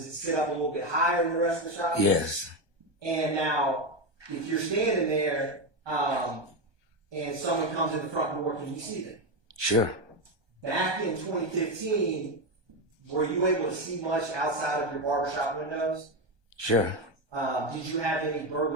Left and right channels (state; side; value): late; left; 1.2 ms